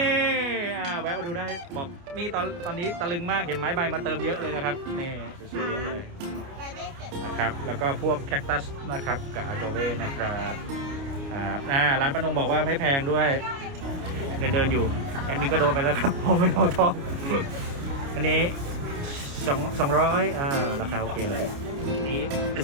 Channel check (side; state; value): left; late; 29 ms